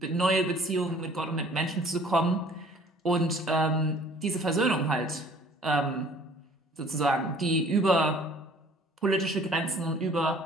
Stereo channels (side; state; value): both; normal; correlation 0.53